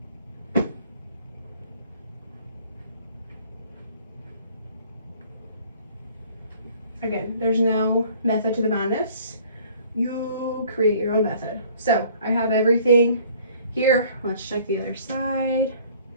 Again, there's no method to the madness. You create your own method. So I have everything here. Let's check the other side.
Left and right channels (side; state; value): both; inverted; correlation -0.54